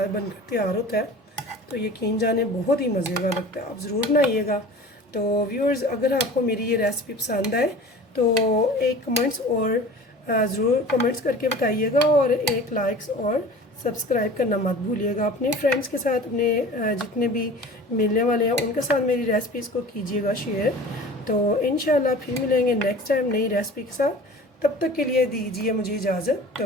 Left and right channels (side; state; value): both; normal; correlation 0.41